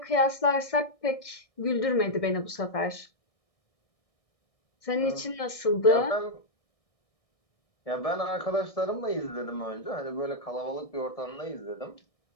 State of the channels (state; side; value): late; right; 1.6 ms